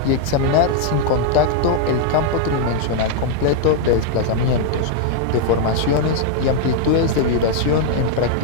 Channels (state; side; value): different; both; correlation 0.00